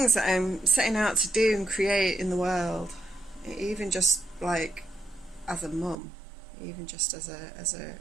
that I'm setting out to do and create in the world? Even just as a mum, even just as a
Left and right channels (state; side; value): drops out; left; at 6.0 s